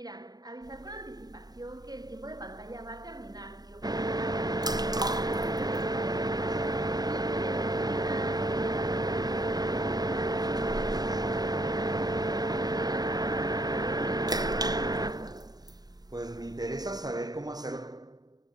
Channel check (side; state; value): left; late; 0.19 ms